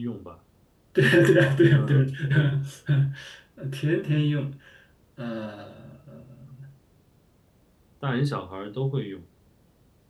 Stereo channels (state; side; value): identical; both; correlation 1.00